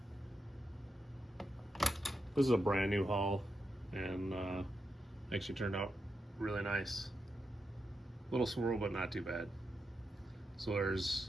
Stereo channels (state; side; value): normal; both; correlation 0.86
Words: This is a brand new hull, and actually turned out really nice. Little swirl, but not too bad. So there's